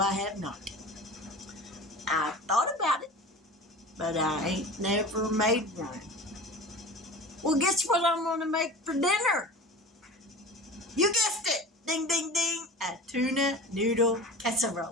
have not. I thought about it, but I ain't never made one. Well, guess what I'm going to make for dinner? You guessed it. Ding, ding, ding. A tuna noodle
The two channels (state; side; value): normal; both; correlation 0.35